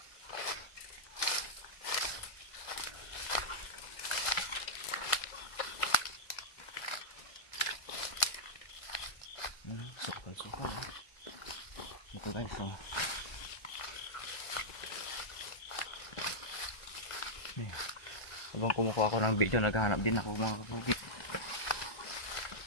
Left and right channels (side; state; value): right; late; 1.4 ms